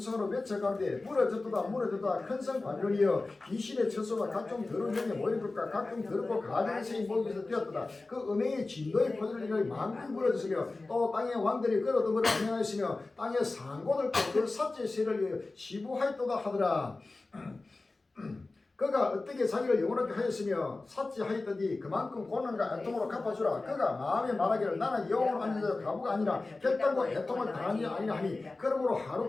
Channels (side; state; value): right; quieter; 3.3 dB